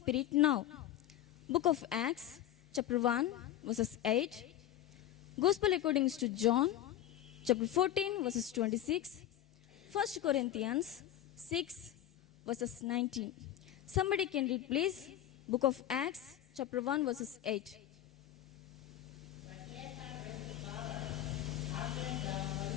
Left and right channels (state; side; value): quieter; right; 12.2 dB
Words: now. Book of Acts, chapter 1, verses 8. Gospel according to John, chapter 14, verses 26. 1 Corinthians 6, verses 19. Somebody can read please. Book of Acts, chapter 1, verses 8.